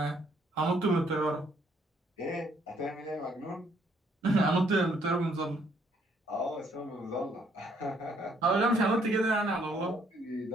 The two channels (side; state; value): both; normal; correlation 0.67